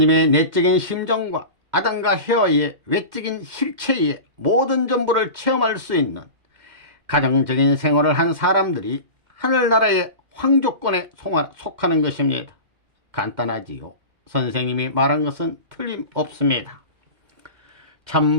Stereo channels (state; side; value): late; left; 2.1 ms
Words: 내적인 심정과 아담과 헤와의 외적인 실체의 모든 전부를 체험할 수 있는 가정적인 생활을 한 사람들이 하늘나라의 황족권에 속하는 것입니다. 간단하지요. 선생님이 말한 것은 틀림없습니다.